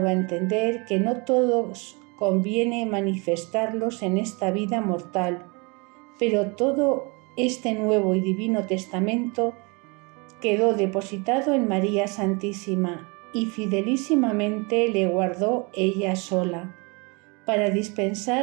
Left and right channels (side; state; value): left; quieter; 29.7 dB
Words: a entender que no todos conviene manifestarlos en esta vida mortal, pero todo este nuevo y divino testamento quedó depositado en María Santísima y fidelísimamente le guardó ella sola, para